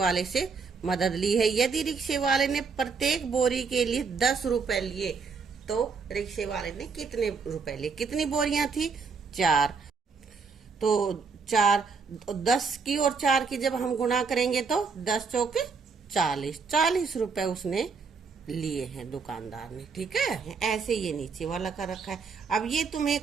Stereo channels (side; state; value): left; quieter; 5.1 dB